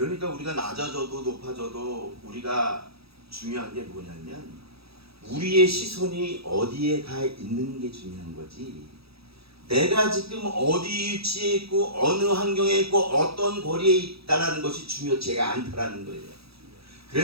우리가 낮아져도 높아져도 우리가 중요한 게 뭐냐면, 우리의 시선이 어디에 가 있는 게 중요한 거지, 내가 지금 어디 위치에 있고 어느 환경에 있고 어떤 거리에 있다는 것이 중요치가 않다라는 거예요.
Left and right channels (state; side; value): late; left; 0.77 ms